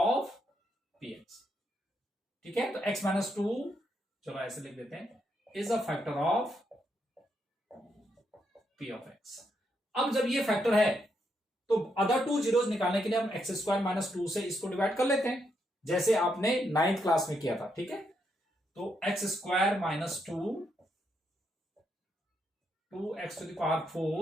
px, ठीक है। तो x माइनस 2, चलो ऐसे लिख देते हैं, is a factor of p of x। अब जब ये फैक्टर है तो अदर 2 जीरोज निकालने के लिए हम x स्क्वायर माइनस 2 से इसको डिवाइड कर लेते हैं, जैसे आपने 9th क्लास में किया था, ठीक है। तो x square minus 2x to the power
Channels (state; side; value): normal; both; correlation 0.79